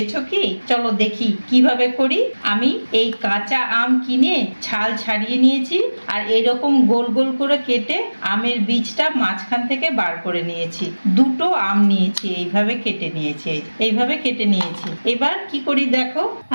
কি? চলো দেখি কিভাবে করি। আমি এই কাঁচা আম কিনে ছাল ছাড়িয়ে নিয়েছি, আর এইরকম গোল গোল করে কেটে আমের বীজটা মাঝখান থেকে বার করে নিয়েছি। দুটো আম নিয়েছি, এইভাবে কেটে নিয়েছি, এইভাবে কেটে নিয়েছি। এবার কি করি দেখো,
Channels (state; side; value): inverted; both; correlation -1.00